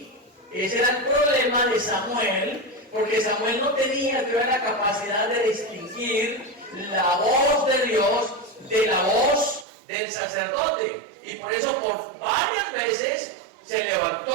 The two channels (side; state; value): left; drops out; at 9.7 s